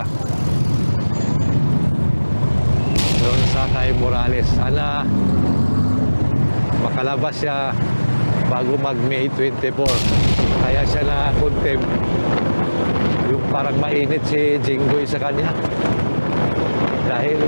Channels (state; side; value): inverted; both; correlation -1.00